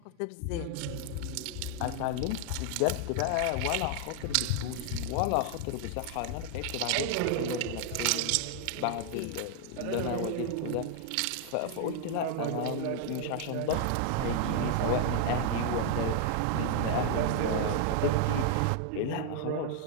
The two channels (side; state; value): both; different; correlation 0.00